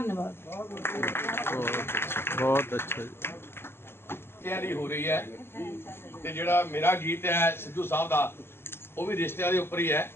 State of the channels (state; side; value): late; right; 0.11 ms